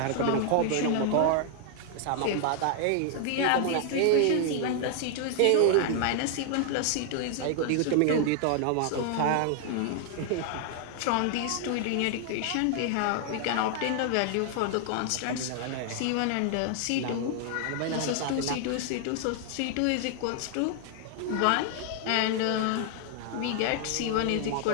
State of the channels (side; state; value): both; different; correlation 0.00